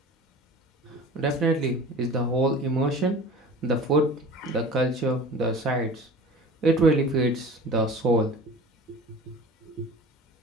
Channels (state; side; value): normal; both; correlation 0.40